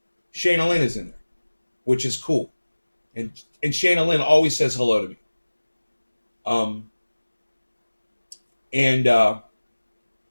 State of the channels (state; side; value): inverted; both; correlation -1.00